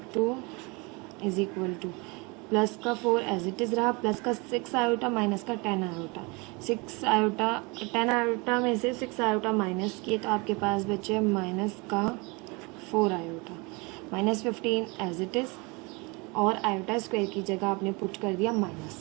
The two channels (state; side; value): quieter; left; 28.0 dB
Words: is equal two plus का 4 एज इट इज़ रहा, प्लस का 6 आयोटा माइनस का 10 आयोटा। 6 आयोटा 10 आयोटा में से 6 आयोटा माइनस किए तो आपके पास बचे माइनस का 4 iota, minus 15 as it is, और आयोटा स्क्वायर की जगह आपने पुट कर दिया